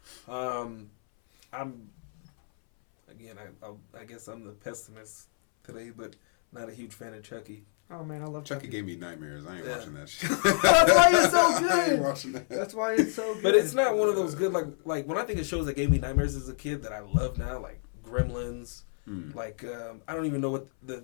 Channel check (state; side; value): silent; right; 59 dB below the other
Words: I guess I'm the pessimist today, but not a huge fan of Chucky. Oh, man, I love Chucky gave me nightmares. I ain't watching that shit. That's why it's so good. I ain't watching that. That's why it's so good. But it's not one of those good, like when I think of shows that gave me nightmares as a kid that I love now, like Gremlins. Like, I don't even know what